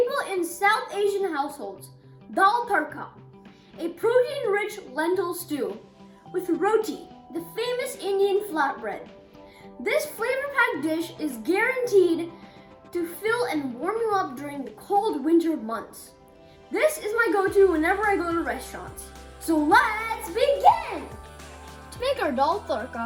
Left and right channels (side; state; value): both; identical; correlation 1.00